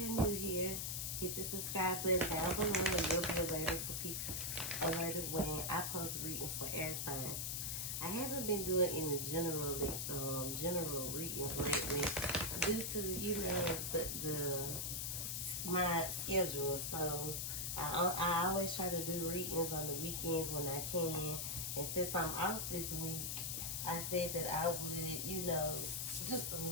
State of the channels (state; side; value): noise; left; hiss, 1 dB below the sound